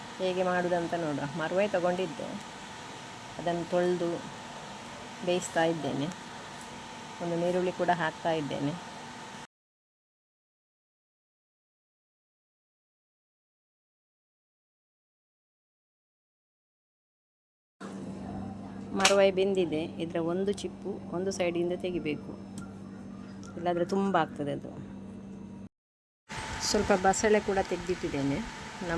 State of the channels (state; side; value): identical; both; correlation 1.00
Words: ಹೇಗೆ ಮಾಡೋದಂತ ನೋಡುವ. ಮರುವಾಯಿ ತಗೊಂಡಿದ್ದೆ, ಅದನ್ನು ತೊಳೆದು ಬೇಯಿಸ್ತಾ ಇದ್ದೇನೆ. ಒಂದು ನೀರುಳ್ಳಿ ಕೂಡ ಹಾಕ್ತಾ ಇದ್ದೇನೆ. ಮರುವಾಯಿ ಬೆಂದಿದೆ. ಇದರ ಒಂದು ಚಿಪ್ಪು ಒಂದು ಸೈಡಿಂದ ತೆಗಿಬೇಕು, ಇಲ್ಲಾಂದರೆ ತುಂಬ ಆಗ್ತದೆ ಅದು. ಸ್ವಲ್ಪ ಬಸಳೆ ಕೂಡ ತೆಗೆದಿಟ್ಟಿದ್ದೇನೆ,